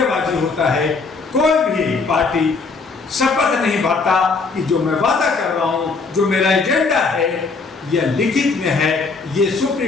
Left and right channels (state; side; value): quieter; right; 4.3 dB